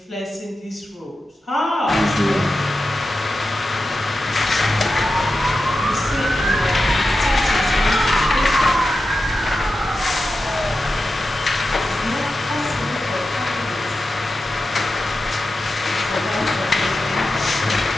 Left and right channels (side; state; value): both; normal; correlation 0.91